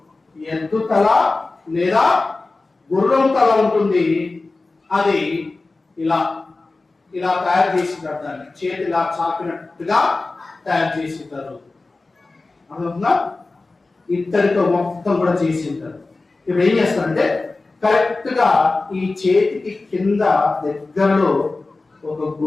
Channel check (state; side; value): quieter; right; 3.5 dB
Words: ఎద్దు తల లేదా గుర్రం తల ఉంటుంది. అది ఇలా ఇలా తయారు చేసింటారు. దాన్ని చేతి ఇలా చాపినట్టుగా తయారు చేసింటారు. అర్థమవుతుందా? ఇత్తడితో మొత్తం కూడా చేసింటారు. ఇప్పుడు ఏం చేస్తారంటే, కరెక్ట్ గా ఈ చేతికి కింద దగ్గరలో ఒక